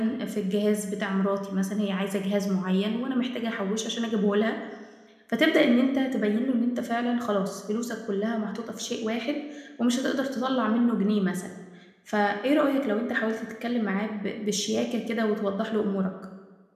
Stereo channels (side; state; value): both; identical; correlation 1.00